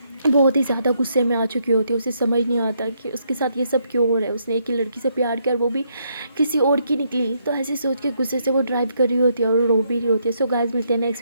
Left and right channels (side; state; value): both; inverted; correlation -0.75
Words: बहुत ही ज़्यादा गुस्से में आ चुकी होती है, उसे समझ नहीं आता कि उसके साथ ये सब क्यों हो रहा है, उसने एक ही लड़की से प्यार किया और वो भी किसी और की निकली। तो ऐसे सोच के गुस्से से वो ड्राइव कर रही होती है और रो भी रही होती है। सो गाइस मिलते हैं